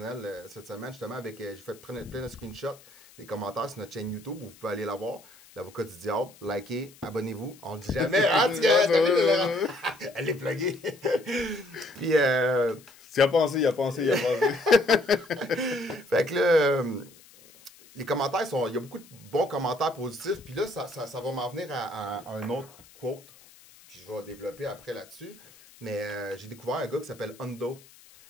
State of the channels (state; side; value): noise; left; hiss, 24 dB below the sound